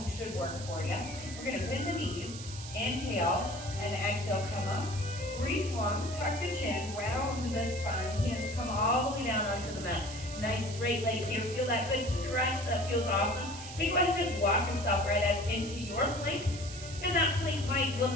should work for you. We're gonna bend the knees, inhale and exhale, come up. Reach long, tuck the chin, round the spine, hands come all the way down onto the mat. Nice straight legs here, feel that good stretch, that feels awesome. You go ahead and just walk yourself right up into your plank. And that plank might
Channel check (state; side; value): noise; right; hiss, 12 dB below the sound